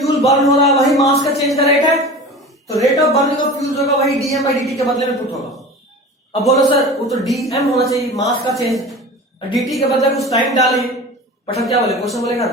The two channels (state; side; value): normal; both; correlation 0.35